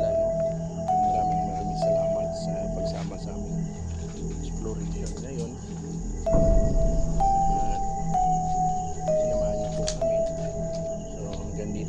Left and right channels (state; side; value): identical; both; correlation 1.00